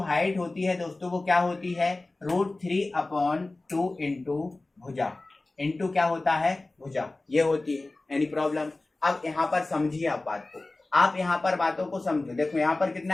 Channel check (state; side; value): quieter; right; 3.1 dB